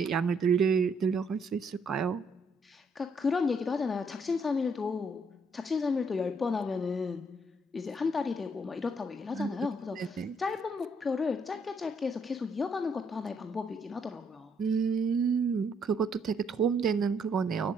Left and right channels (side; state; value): both; normal; correlation 0.71